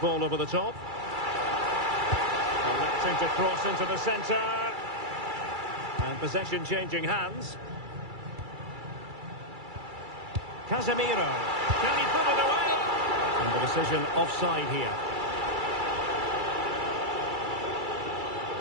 over the top. Electing to cross into the centre. And possession changing hands. Casemiro. Can he put it away? And the decision offside here.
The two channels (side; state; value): left; late; 2.3 ms